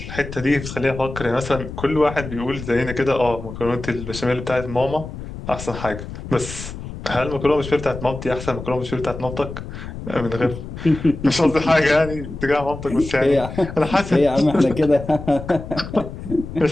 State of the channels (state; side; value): noise; left; rumble, 10 dB below the sound